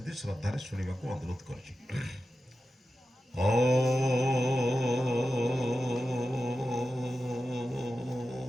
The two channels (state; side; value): normal; both; correlation 0.92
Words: श्रद्धार शुणा को अनुरोध कर